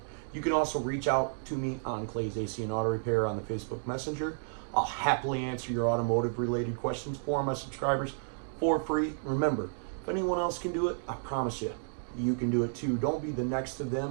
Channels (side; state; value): left; silent; digital silence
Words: You can also reach out to me on Clay's AC and Auto Repair on the Facebook Messenger. I'll happily answer your automotive related questions for my subscribers for free. Remember, if anyone else can do it, I promise you, you can do it too. Don't be the next to